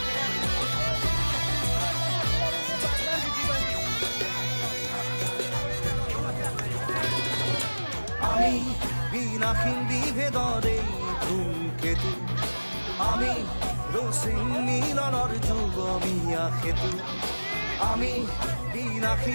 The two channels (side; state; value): both; inverted; correlation -1.00